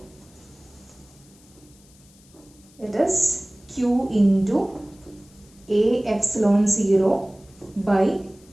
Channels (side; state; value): left; noise; hiss, 28 dB below the sound